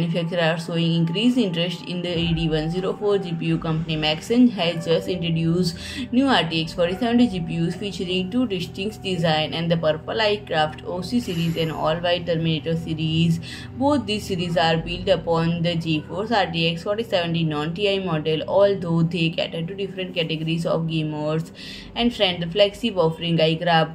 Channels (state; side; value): identical; both; correlation 1.00